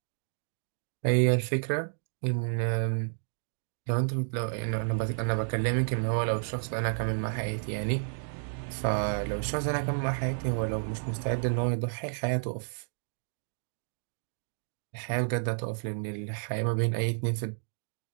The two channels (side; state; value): left; silent; digital silence